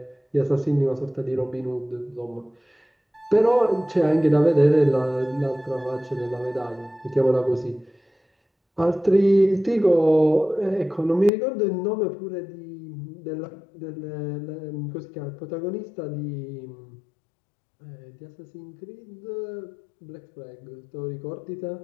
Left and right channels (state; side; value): drops out; right; at 11.3 s